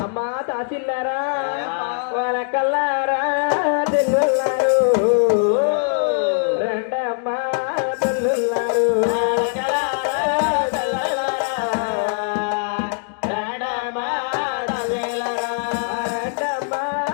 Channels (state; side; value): silent; right; digital silence